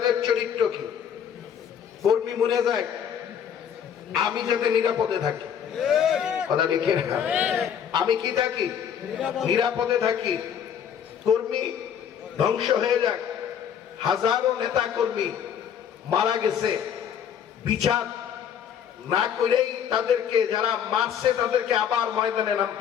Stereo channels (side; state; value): right; quieter; 8.5 dB